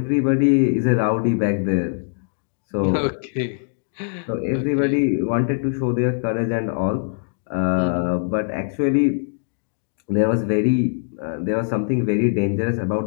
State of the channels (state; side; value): silent; right; digital silence